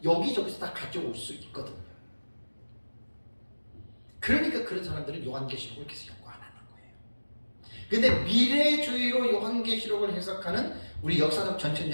여기저기서 다 가져올 수 있거든요. 그러니까 그런 사람들은 요한계시록을 계속 연구 안 하는 거예요. 근데 미래주의로 요한계시록을 해석하는 우리 역사적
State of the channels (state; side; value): inverted; both; correlation -1.00